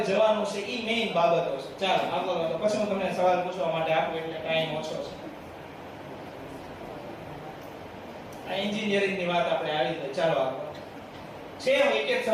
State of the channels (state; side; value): identical; both; correlation 1.00